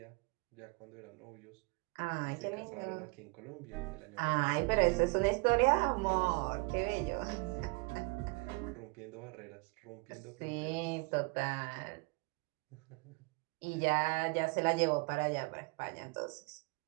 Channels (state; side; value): quieter; left; 29.3 dB